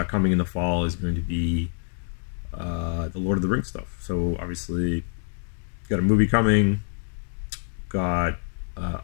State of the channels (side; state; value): right; silent; digital silence